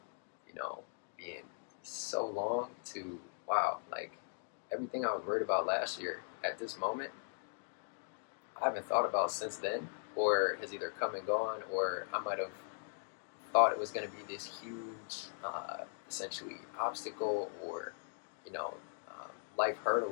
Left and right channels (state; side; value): silent; right; digital silence